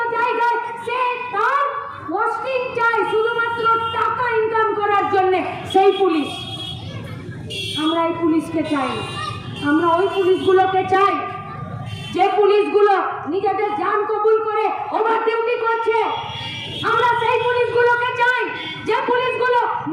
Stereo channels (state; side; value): identical; both; correlation 1.00